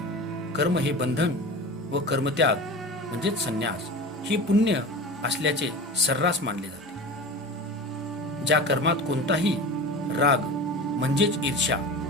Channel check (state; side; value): normal; both; correlation 0.31